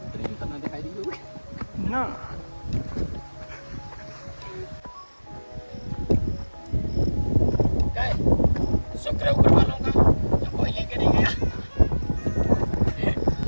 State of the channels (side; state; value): both; inverted; correlation -1.00